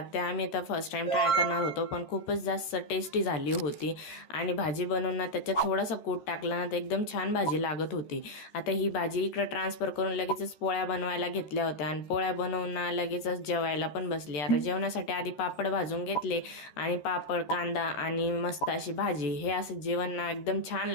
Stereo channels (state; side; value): late; right; 13 ms